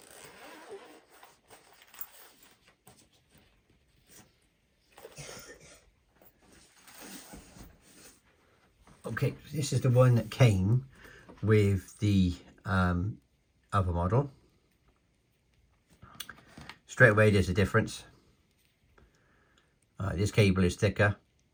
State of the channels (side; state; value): both; identical; correlation 1.00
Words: Okay, this is the one that came with the other model. Straight away there's a difference. This cable is thicker